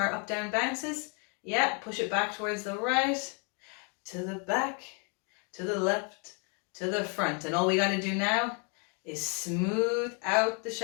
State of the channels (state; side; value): quieter; right; 37.0 dB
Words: up down bounces. Yeah, push it back towards the right, to the back, to the left, to the front. And all we got to do now is smooth out the